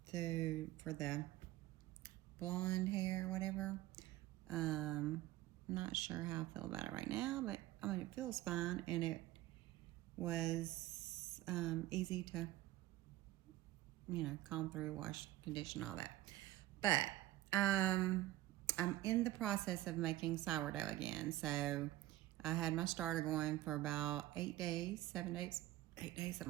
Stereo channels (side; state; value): left; quieter; 15.6 dB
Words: for the blonde hair or whatever. I'm not sure how I feel about it right now, but I mean, it feels fine, and it was easy to, comb through, wash, condition, all that. But I'm in the process of making sourdough again. So I had my starter going for about 8 days, 7 days, 8 days,